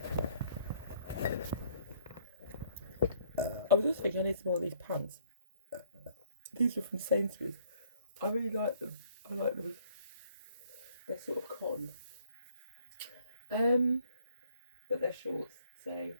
I was just thinking I need some more of these pants. These are from Sainsbury's. I really like them. I like them. They're sort of cotton. But they're shorts. So,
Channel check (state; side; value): inverted; both; correlation -0.62